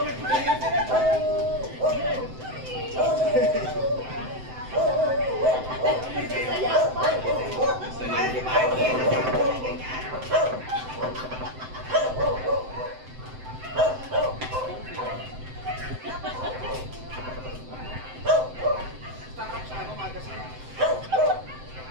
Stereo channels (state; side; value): late; left; 7.8 ms